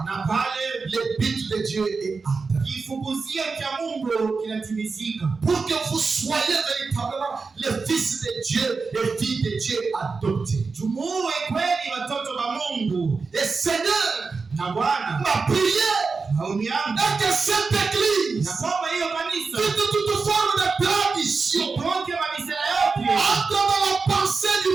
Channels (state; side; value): quieter; left; 4.5 dB